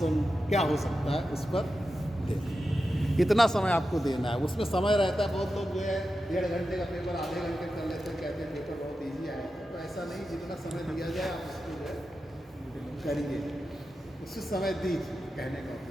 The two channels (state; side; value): normal; both; correlation 0.91